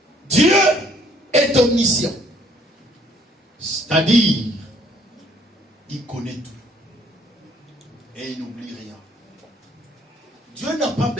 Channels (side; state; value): both; normal; correlation 0.62